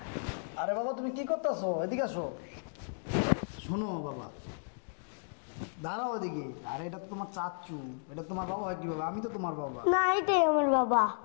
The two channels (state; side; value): silent; right; digital silence